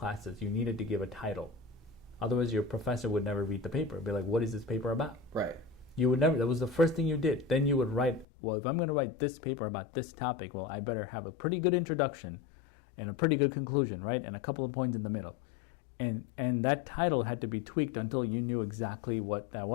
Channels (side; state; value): right; drops out; at 8.2 s